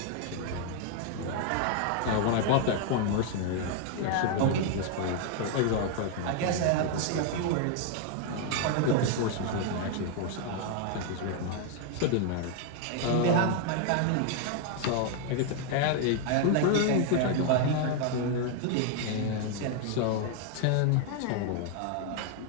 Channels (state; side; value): different; both; correlation 0.00